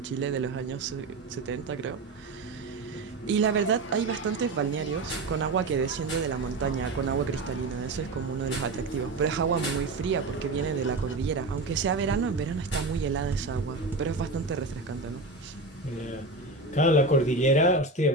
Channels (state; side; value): quieter; left; 3.2 dB